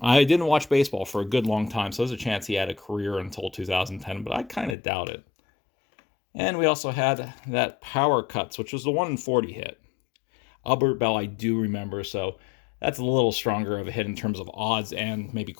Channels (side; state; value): right; drops out; at 4.8 s